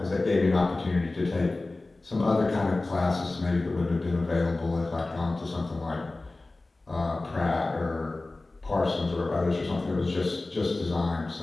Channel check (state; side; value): quieter; right; 3.1 dB